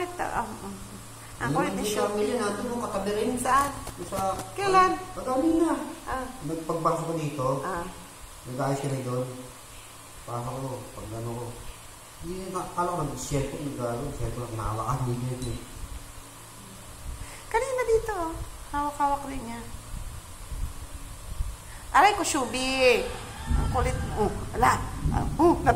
na, ang kulit ni Show. Hindi natin mo katabi rin. Saan? Sa... Kailan? Pagkali na. Ah. Nagpagpasok ko dito. Ah. Nag-ayos ka na doon. Pasok ko. Pag ano ko. Hindi na, kala ko nag-share ko. Share ko lang nahawakan. Hindi. Kanina dito, oh. Hawak-hawak rin niya. Aray ko, Shubi. Ang kulit mo. Ala.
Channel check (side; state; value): both; identical; correlation 1.00